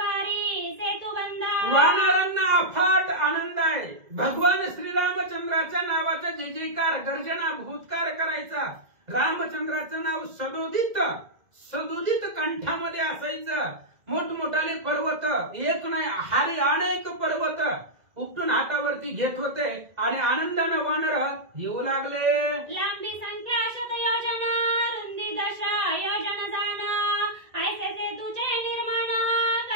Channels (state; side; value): late; left; 2.0 ms